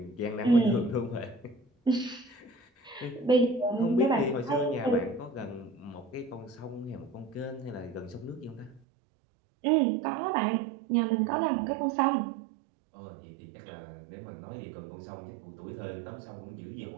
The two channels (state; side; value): drops out; left; at 8.8 s